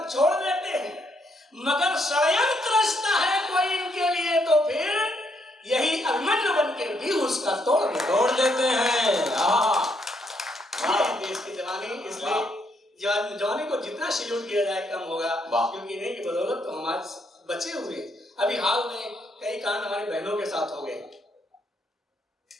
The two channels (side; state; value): both; normal; correlation 0.74